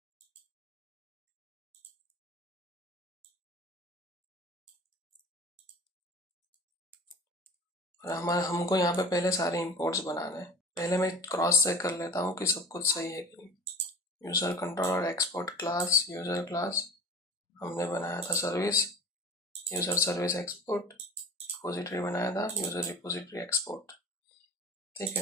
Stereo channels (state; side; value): normal; both; correlation 0.39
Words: और हमारे हमको यहाँ पे पहले सारे इंपोर्ट्स बनाने हैं। पहले मैं क्रॉस चेक कर लेता हूँ कि सब कुछ सही है कि नहीं। User controller export class, user class हमने बनाया था service, user service export, repository बनाया था यूजर रिपोजिटरी एक्सपोर्ट, ठीक